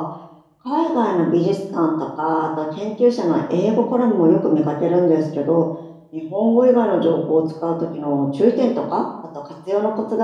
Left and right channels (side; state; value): both; identical; correlation 1.00